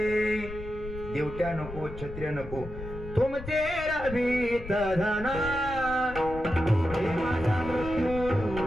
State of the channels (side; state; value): left; noise; rumble, 11 dB below the sound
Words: दिवट्या नको, छत्र्या नको, तुमचे रवीत धन